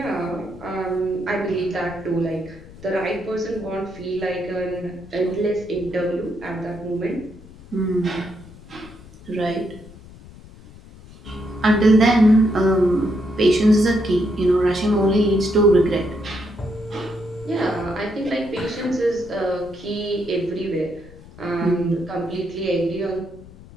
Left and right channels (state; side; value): noise; left; rumble, 20 dB below the sound